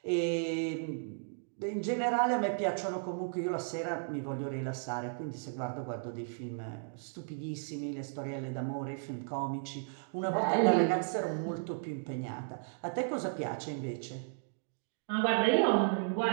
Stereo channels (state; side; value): silent; left; digital silence